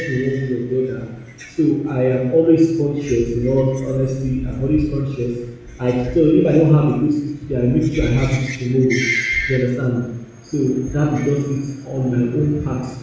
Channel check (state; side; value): identical; both; correlation 1.00